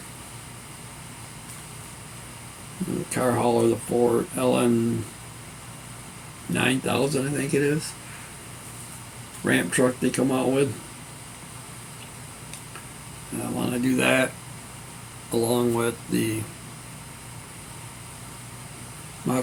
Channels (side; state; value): both; identical; correlation 1.00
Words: The car hauler, the Ford LN 9000, I think it is. Ramp truck they come out with. I want to do that along with the